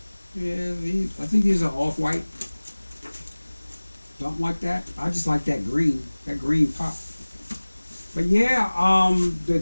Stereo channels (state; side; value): inverted; both; correlation -1.00